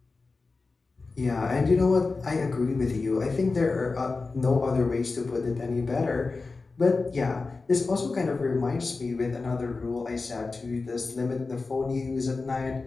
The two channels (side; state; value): right; quieter; 3.9 dB